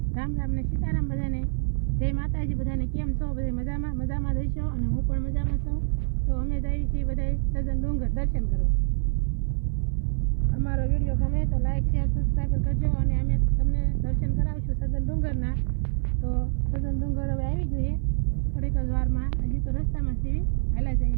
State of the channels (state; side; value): silent; left; 56 dB below the other